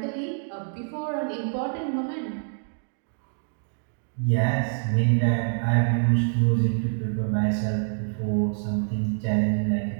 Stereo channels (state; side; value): silent; left; digital silence